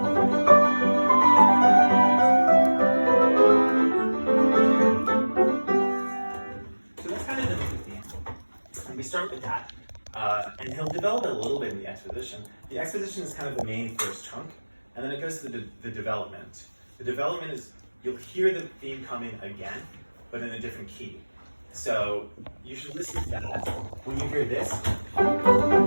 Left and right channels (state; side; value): inverted; both; correlation -1.00